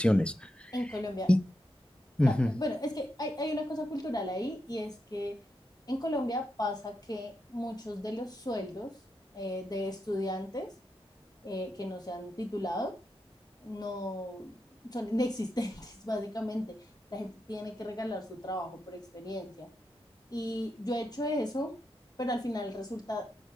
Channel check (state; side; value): normal; both; correlation 0.86